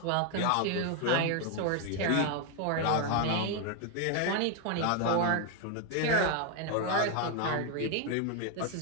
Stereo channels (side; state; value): both; different; correlation 0.01